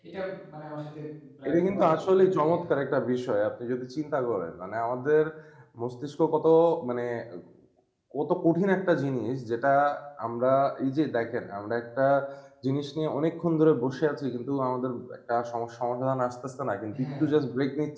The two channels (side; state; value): both; identical; correlation 1.00